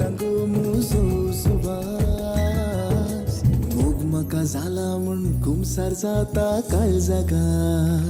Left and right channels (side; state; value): both; identical; correlation 1.00